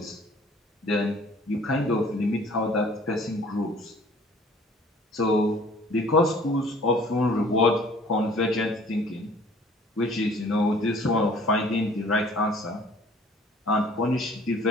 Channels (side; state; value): both; normal; correlation 0.53